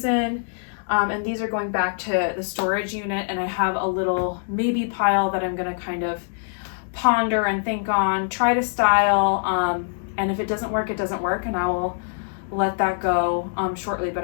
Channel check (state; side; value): silent; right; digital silence